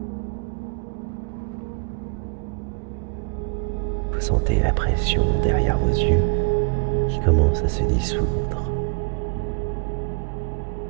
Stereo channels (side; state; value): left; quieter; 34.1 dB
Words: Vous sentez la pression derrière vos yeux qui commence à se dissoudre.